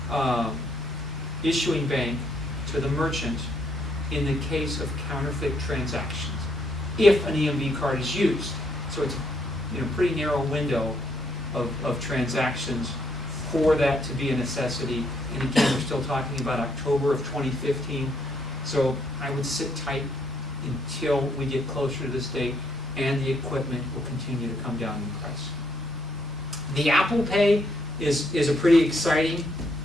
issuing bank to the merchant in the case of counterfeit transactions, if an EMV card is used. So it's a pretty narrow window of transactions for that to be a necessity. And again, we're still talking about October of 2015. So I would sit tight until we get closer to this date, and the equipment will continue to come down in price. The Apple Pay is a pretty exciting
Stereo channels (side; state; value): both; normal; correlation 0.73